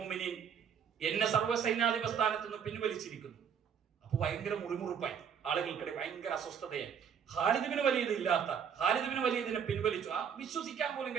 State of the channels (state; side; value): quieter; left; 7.6 dB